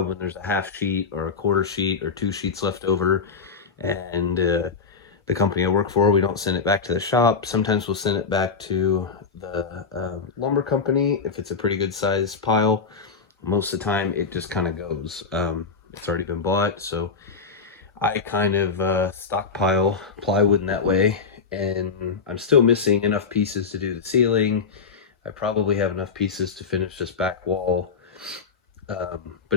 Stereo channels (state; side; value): quieter; right; 5.2 dB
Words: when there's a 1/2 sheet or a 1/4 sheet or 2 sheets left over, and the company I work for, we don't send it back to the shop. Sometimes we'll send it back to the lumber company if it's a pretty good size pile. Most of the time it just kind of goes. It's already been bought, so I kind of stockpile plywood in that way. And I'm still missing enough pieces to do the ceiling. I probably have enough pieces to finish this back wall,